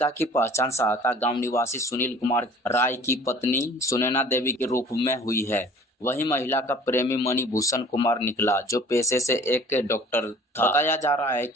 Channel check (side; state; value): both; normal; correlation 0.49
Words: की पहचान सहता गाँव निवासी सुनील कुमार राय की पत्नी सुनैना देवी के रूप में हुई है। वही महिला का प्रेमी मणिभूषण कुमार निकला, जो पेशे से एक डॉक्टर था। बताया जा रहा है